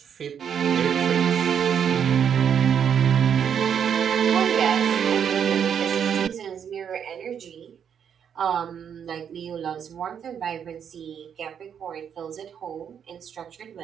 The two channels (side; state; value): left; quieter; 8.1 dB